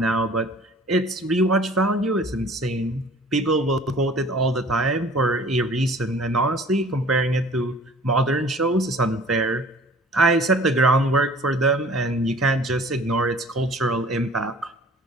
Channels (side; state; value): both; normal; correlation 0.49